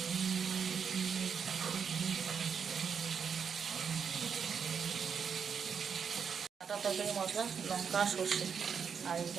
ডাঁটা তরকারি মশলা, লঙ্কা, সর্ষে, আর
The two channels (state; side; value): quieter; left; 6.7 dB